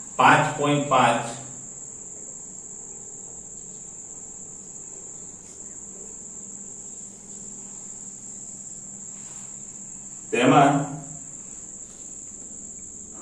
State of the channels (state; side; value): identical; both; correlation 1.00